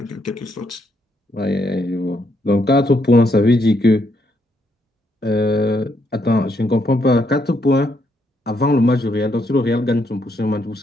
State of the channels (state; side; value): normal; both; correlation 0.76